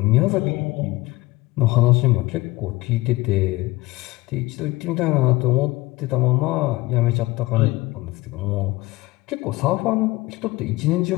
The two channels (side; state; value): right; quieter; 20.6 dB